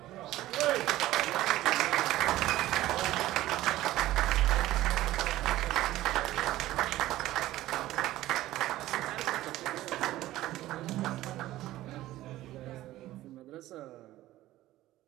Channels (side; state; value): left; quieter; 15.5 dB